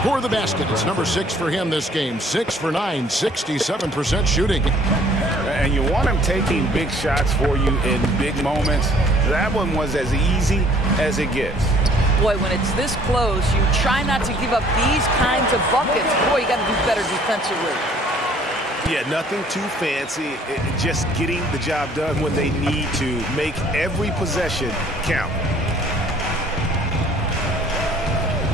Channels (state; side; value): normal; both; correlation 0.57